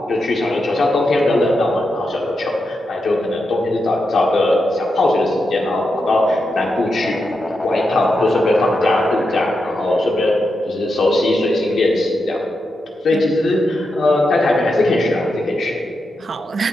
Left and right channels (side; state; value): both; normal; correlation 0.86